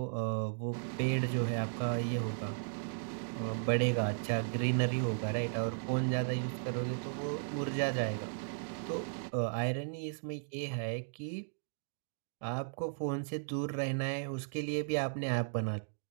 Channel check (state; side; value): silent; left; digital silence